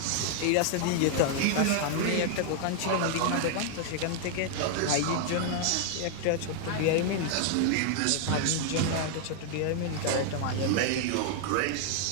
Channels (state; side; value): different; both; correlation 0.00